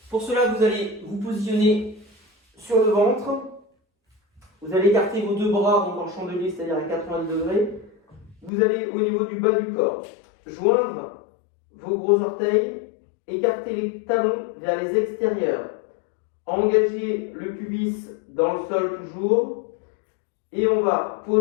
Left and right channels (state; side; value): drops out; right; at 8.5 s